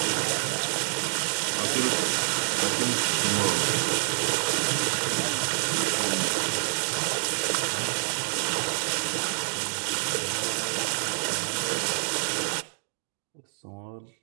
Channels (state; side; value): silent; left; digital silence